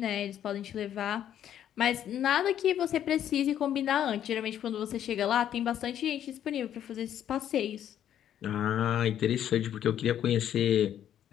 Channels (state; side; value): quieter; right; 10.4 dB